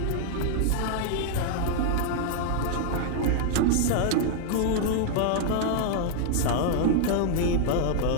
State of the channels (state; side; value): different; both; correlation 0.00